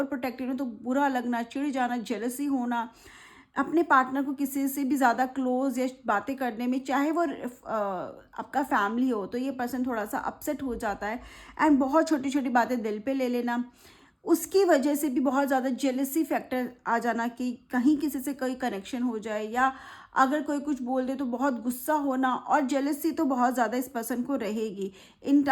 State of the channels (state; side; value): identical; both; correlation 1.00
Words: प्रोटेक्टिव है, तो बुरा लगना, चिढ़ जाना, जेलसी होना, अपने पार्टनर को किसी से भी ज़्यादा क्लोज या बातें करने में, चाहे वो आपका फैमिली हो, तो ये पर्सन थोड़ा सा अपसेट हो जाता है। एंड बहुत छोटी छोटी बातें दिल पे ले लेना, उसकी वजह से भी बहुत ज़्यादा जेलसी फैक्टर आ जाना कि कहीं किसी से कोई कनेक्शन हो जाए, या अगर कोई कुछ बोल दे तो बहुत गुस्सा होना, और जेलसी तो बहुत ज़्यादा इस पर्सन को रहेगी in